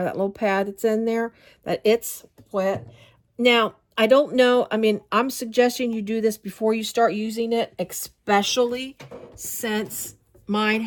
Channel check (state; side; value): identical; both; correlation 1.00